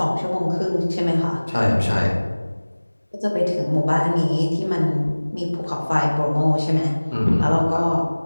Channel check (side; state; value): both; inverted; correlation -1.00